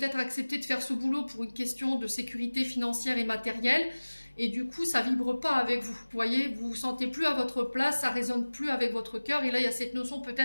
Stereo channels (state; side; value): inverted; both; correlation -1.00